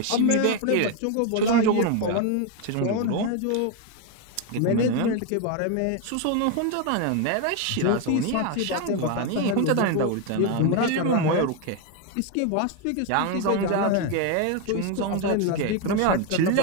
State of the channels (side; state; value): both; different; correlation 0.01